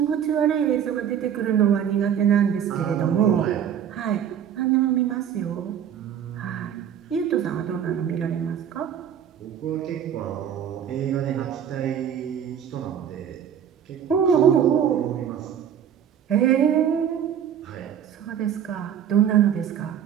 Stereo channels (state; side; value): quieter; left; 9.0 dB